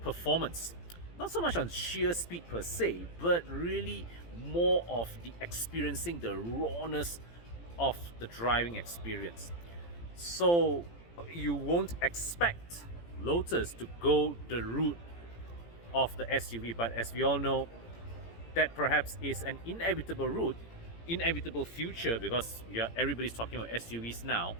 performance. Not so much on sheer speed per se, but really more of the experiencing the rawness of the driving experience. So you won't expect Lotus to go the route of the SUV, but as we all know, that perhaps is an inevitable route, inevitable future, because everybody's talking about SUVs now.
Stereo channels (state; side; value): late; right; 17 ms